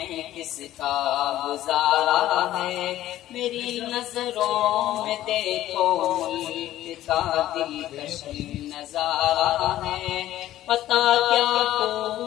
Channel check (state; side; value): quieter; right; 13.8 dB